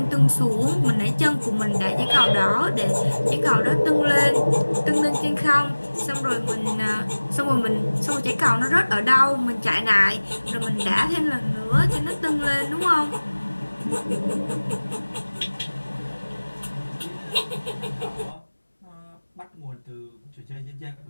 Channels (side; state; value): both; inverted; correlation -1.00